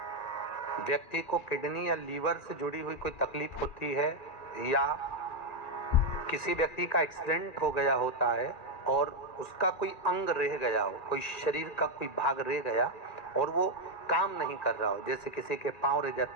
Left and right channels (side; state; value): right; late; 2.3 ms